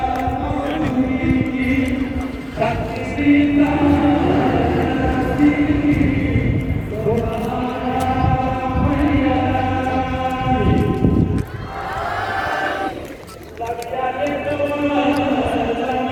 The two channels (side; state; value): both; identical; correlation 1.00